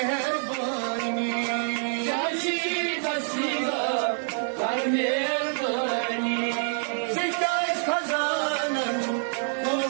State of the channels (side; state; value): left; silent; 57 dB below the other